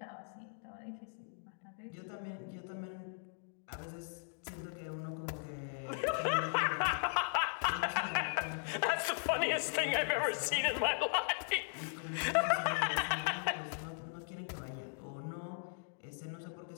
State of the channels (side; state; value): right; silent; digital silence